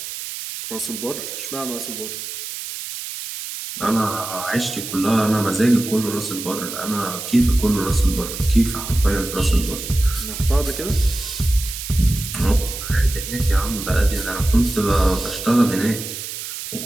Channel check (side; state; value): right; noise; hiss, 8 dB below the sound